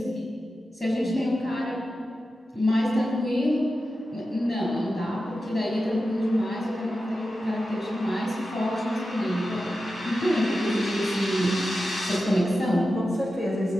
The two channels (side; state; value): both; normal; correlation 0.92